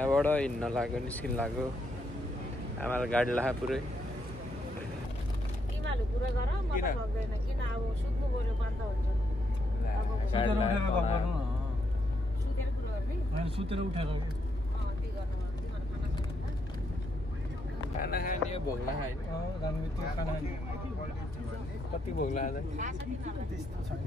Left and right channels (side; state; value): both; normal; correlation 0.78